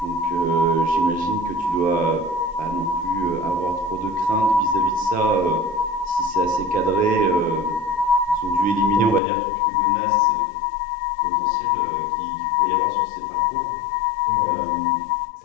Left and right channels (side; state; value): right; drops out; at 9.2 s